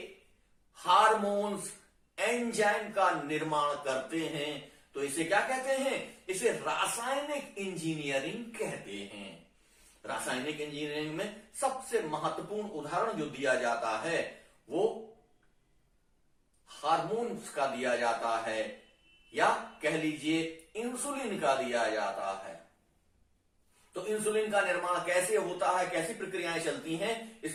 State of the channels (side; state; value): both; identical; correlation 1.00